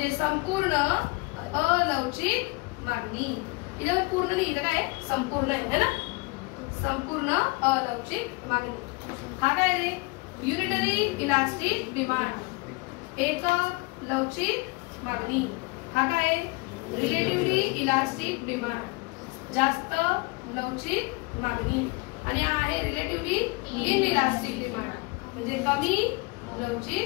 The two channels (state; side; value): quieter; right; 26.6 dB